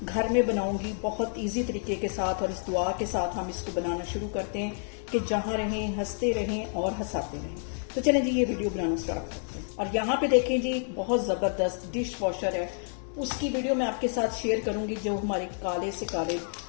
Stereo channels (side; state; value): right; silent; 57 dB below the other